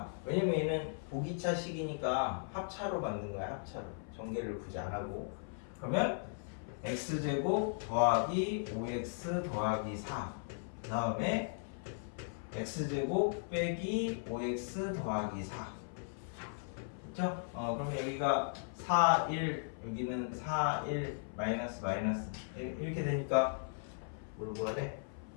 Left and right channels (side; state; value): right; silent; 53 dB below the other